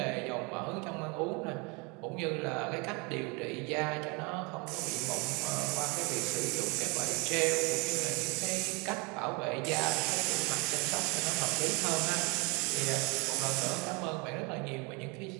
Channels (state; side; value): quieter; left; 29.5 dB